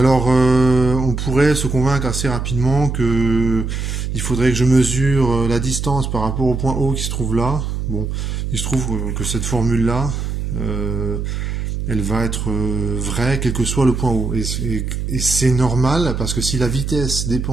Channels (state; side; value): noise; right; hum, 3 dB below the sound